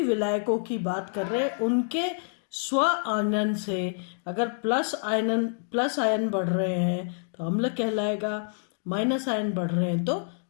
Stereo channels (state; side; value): silent; right; digital silence